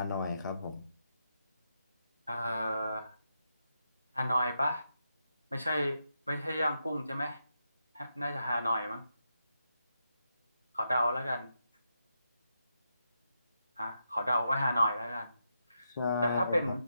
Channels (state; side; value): inverted; both; correlation -0.84